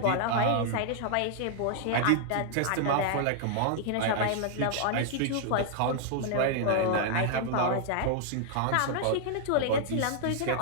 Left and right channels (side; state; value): both; different; correlation -0.01